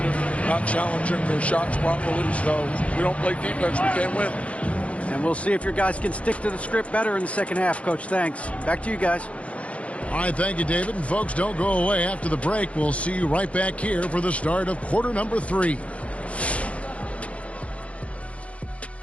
not challenging their shots properly. So we don't play defense, we can't win. And we'll see if your guys can stick to the script better in the second half, Coach. Thanks. Back to you guys. All right, thank you, David. And folks, don't go away after the break. We'll see you right back here for the start of quarter number 3.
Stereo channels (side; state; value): right; late; 0.063 ms